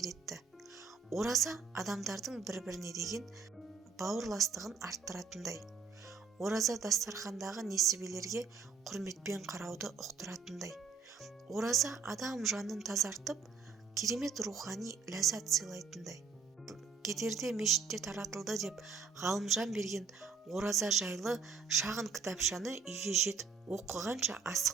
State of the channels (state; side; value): quieter; left; 5.5 dB